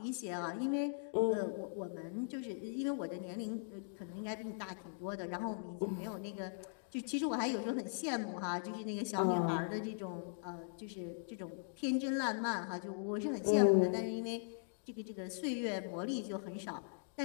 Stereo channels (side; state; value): right; silent; digital silence